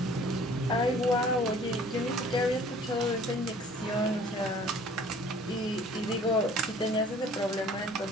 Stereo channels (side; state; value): both; normal; correlation 0.52